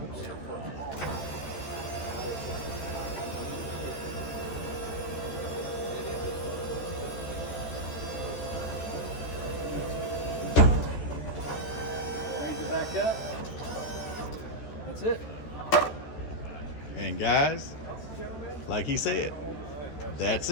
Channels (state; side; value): late; right; 13 ms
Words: Oops. Raise it back up. That's it. And guys, like he said, that's